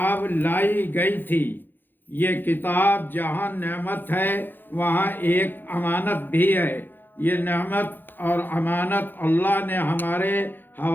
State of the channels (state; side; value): late; right; 0.093 ms